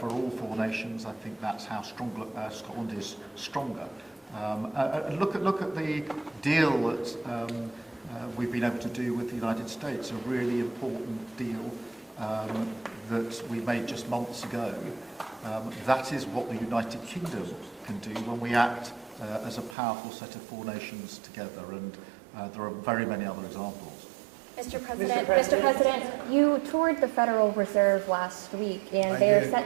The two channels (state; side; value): drops out; left; at 19.8 s